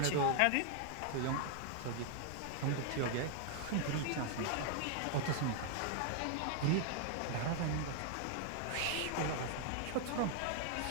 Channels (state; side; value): different; both; correlation 0.00